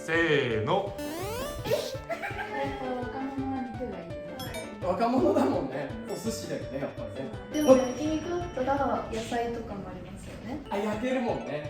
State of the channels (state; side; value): identical; both; correlation 1.00